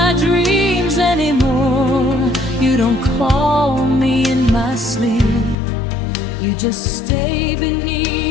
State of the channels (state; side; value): drops out; right; at 5.6 s